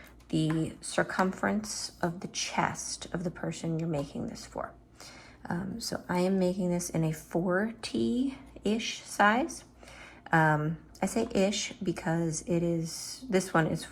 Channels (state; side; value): identical; both; correlation 1.00